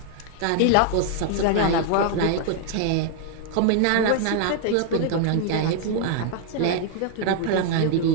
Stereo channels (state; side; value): different; both; correlation 0.00